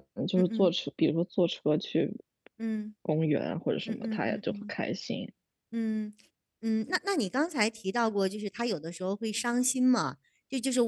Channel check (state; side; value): identical; both; correlation 1.00